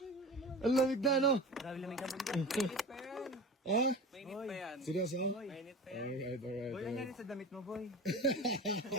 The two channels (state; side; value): normal; both; correlation 0.32